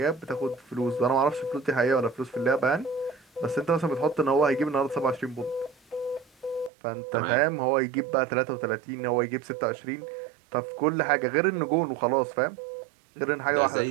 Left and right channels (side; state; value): left; drops out; at 6.7 s